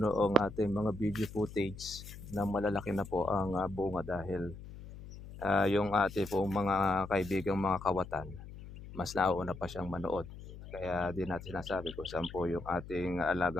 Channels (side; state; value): left; noise; hum, 14 dB below the sound